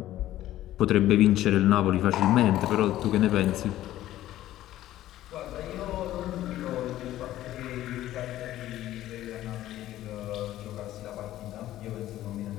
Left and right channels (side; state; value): right; quieter; 14.0 dB